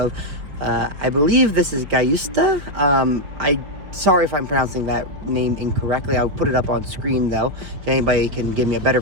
I believe this is Gayusta. Sorry if I'm pronouncing that name incorrectly. I'll put it up on screen though. If anybody can give me a better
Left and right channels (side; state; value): left; late; 5.1 ms